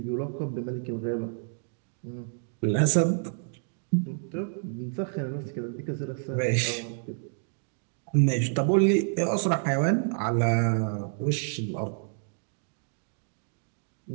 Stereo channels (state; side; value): silent; left; 59 dB below the other